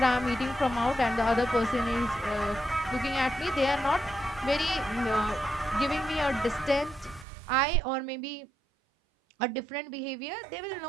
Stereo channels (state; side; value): drops out; left; at 7.2 s